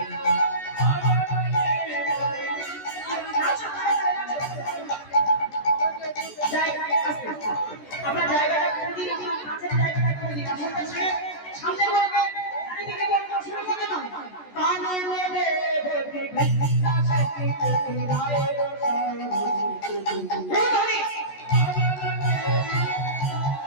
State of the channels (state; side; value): late; right; 14 ms